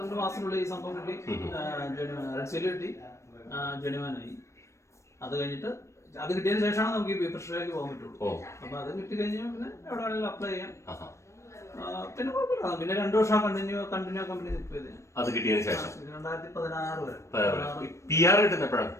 മാസത്തിനുള്ളിൽ ഈ സംഭവം കിട്ടി. റെഡ് സീൽ കിട്ടി, ജെനുവാനായി. അത് കഴിഞ്ഞിട്ട് അത് കിട്ടിയതിന് ശേഷമാണ് നമുക്ക് ഈ പ്രഷറിലേക്ക് പോകാൻ പറ്റുള്ളൂ. അപ്പൊ അത് കിട്ടി കഴിഞ്ഞാൽ പിന്നെ എവിടെ വേണമെങ്കിലും അപ്ലൈ ചെയ്യാം. പിന്നെ കുഴപ്പമില്ല. പിന്നെ 2 വർഷം കണ്ടിന്യൂ കമ്പനി നിൽക്കിയത്. അത് കിട്ടിയതിന് ശേഷം 2016 വരെ PR കിട്ടുന്നപ്പോഴാണ്.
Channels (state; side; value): late; right; 0.14 ms